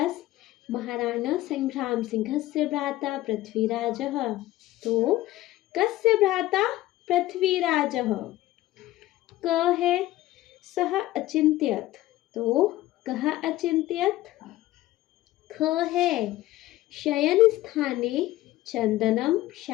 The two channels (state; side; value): quieter; right; 16.2 dB